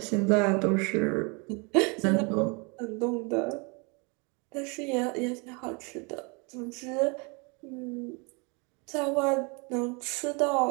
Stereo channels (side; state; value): left; quieter; 31.2 dB